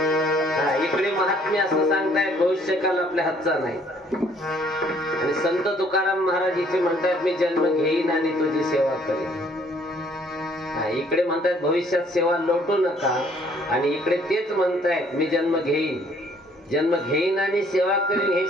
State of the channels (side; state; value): both; normal; correlation 0.62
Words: इकडे महात्म्य असं सांगतायत भविष्यकाल आपल्या हातचा नाही. आणि संत तुकाराम महाराज इथे म्हणतात मी जन्म घेईन आणि तुझी सेवा करेन. इकडे म्हणतात भविष्यात सेवा लोटू नका, आणि इकडे तेच म्हणतायत मी जन्म घेईन आणि सेवा करीन. हे